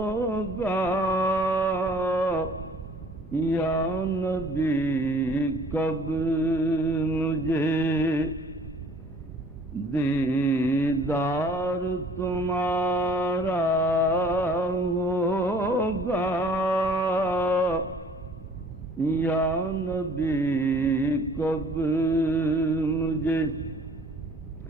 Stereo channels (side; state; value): both; normal; correlation 0.53